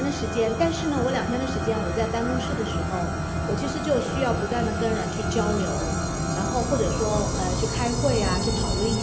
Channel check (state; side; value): identical; both; correlation 1.00